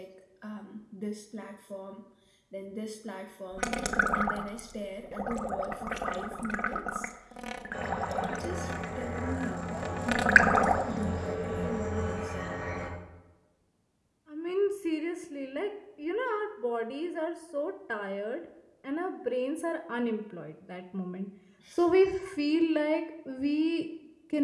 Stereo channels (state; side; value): identical; both; correlation 1.00